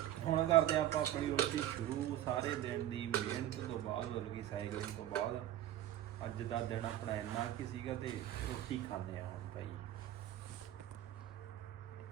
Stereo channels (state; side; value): quieter; left; 12.8 dB